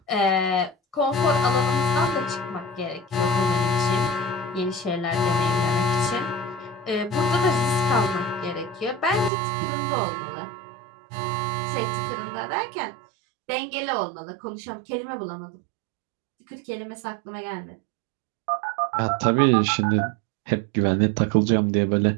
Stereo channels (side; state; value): left; drops out; at 9.3 s